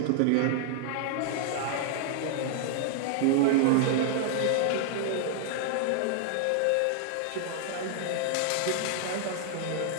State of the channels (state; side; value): different; both; correlation -0.01